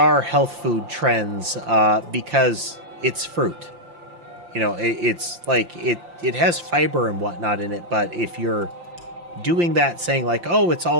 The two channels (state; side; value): late; left; 5.8 ms